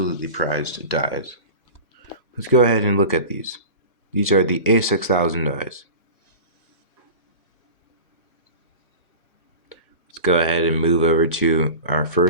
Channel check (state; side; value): inverted; both; correlation -0.33